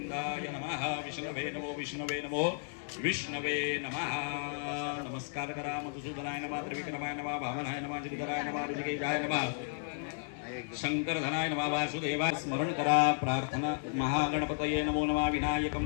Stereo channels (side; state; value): right; silent; 55 dB below the other